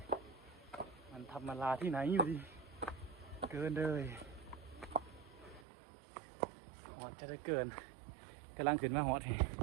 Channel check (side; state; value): left; drops out; at 5.7 s